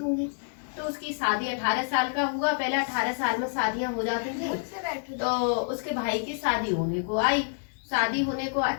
तो उसकी शादी 18 साल का हुआ। पहले 18 साल में शादियां हो जाती थी। तो उसके भाई की शादी होने को आई, शादी होने को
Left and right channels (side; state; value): right; silent; digital silence